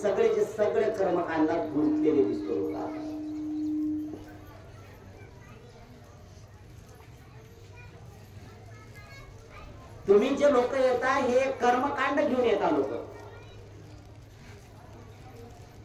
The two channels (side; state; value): both; identical; correlation 1.00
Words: सगळे कर्मकांडात गुंतलेले दिसतो लोक. तुम्ही जे लोक येता हे कर्मकांड घेऊन येता लोक.